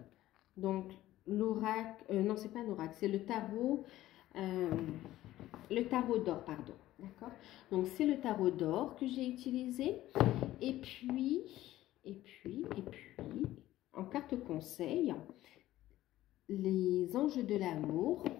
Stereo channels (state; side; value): quieter; right; 14.9 dB